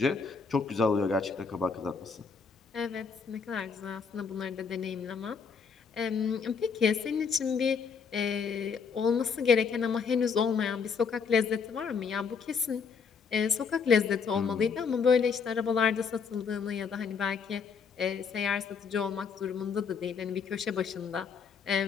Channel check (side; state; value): right; quieter; 5.8 dB